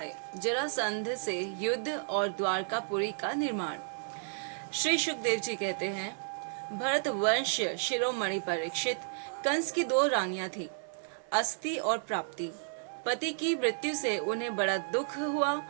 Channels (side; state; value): left; silent; 56 dB below the other